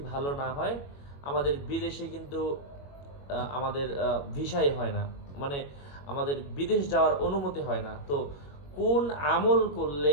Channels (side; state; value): right; late; 21 ms